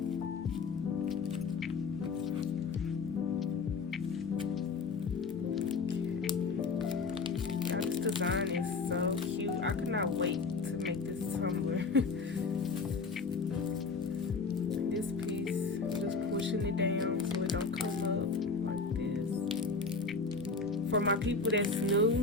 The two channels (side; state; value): right; quieter; 4.4 dB